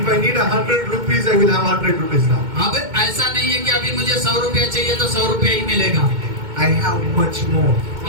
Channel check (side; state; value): left; late; 2.2 ms